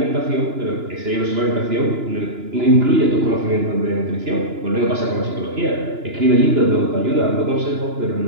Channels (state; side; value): late; left; 2.9 ms